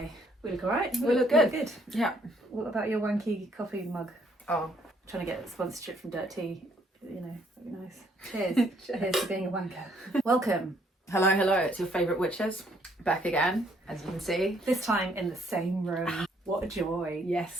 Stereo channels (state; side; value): normal; both; correlation 0.67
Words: We look alright? We look good. Good. Yeah. What about your wanky coffee mug? Oh, Trying to get sponsorship from Dirt Tea. You know, that'd be nice. Cheers. Cheers for being a wanker. Welcome. hello. It's your favourite witches. Back again, as you can see. This time in the same room. What a joy.